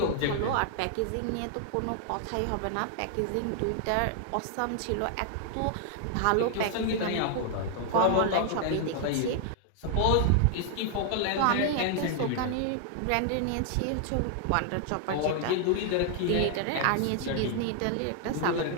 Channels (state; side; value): different; both; correlation 0.00